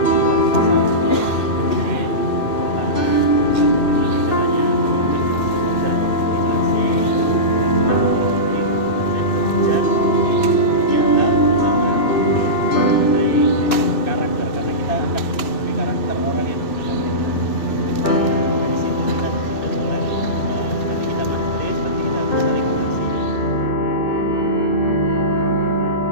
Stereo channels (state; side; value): late; right; 2.6 ms